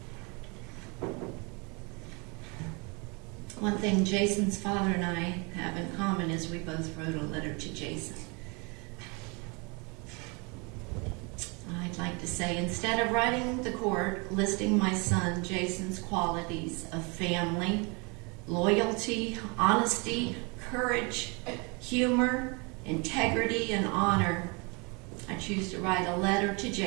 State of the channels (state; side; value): quieter; left; 30.6 dB